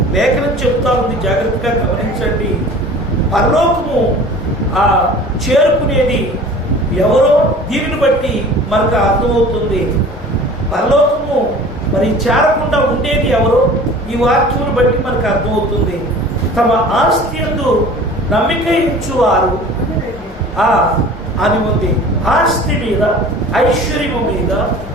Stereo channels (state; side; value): normal; both; correlation 0.43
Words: లేఖనం చెప్తా ఉంది, జాగ్రత్తగా గమనించండి. పరలోకము చేరుకునేది ఎవరో దీనిని బట్టి మనకు అర్థమవుతుంది. పరలోకము మరి చేరకుండా ఉండేది ఎవరో ఈ వాక్యమును బట్టి మనకు అర్థమవుతుంది. తమ ఆస్తి యందు నమ్మిక ఉంచువారు అని ఉంది. ఆస్తి మీద, ఐశ్వర్యము మీద,